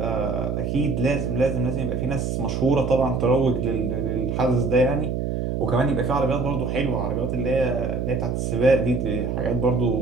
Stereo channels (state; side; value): noise; right; hum, 1 dB below the sound